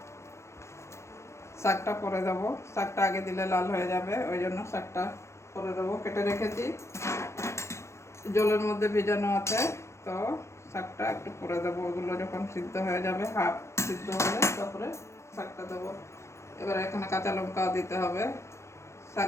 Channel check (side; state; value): right; late; 0.13 ms